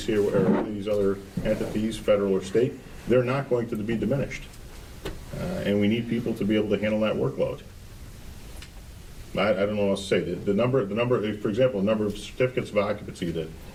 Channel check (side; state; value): both; identical; correlation 1.00